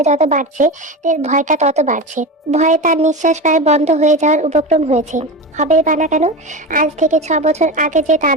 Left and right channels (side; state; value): both; normal; correlation 0.24